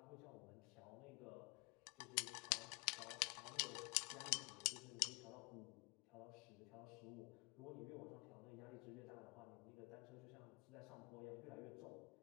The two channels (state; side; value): quieter; right; 31.4 dB